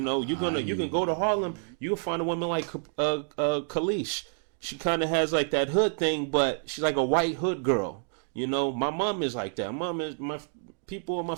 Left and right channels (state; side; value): silent; left; digital silence